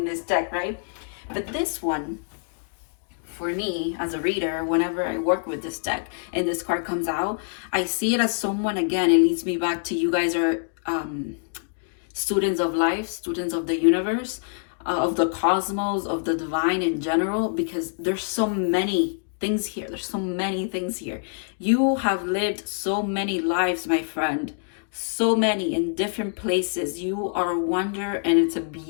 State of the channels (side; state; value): right; silent; digital silence